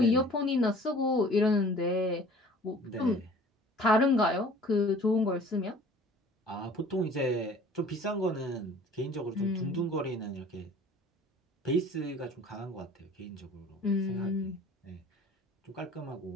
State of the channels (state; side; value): normal; both; correlation 0.49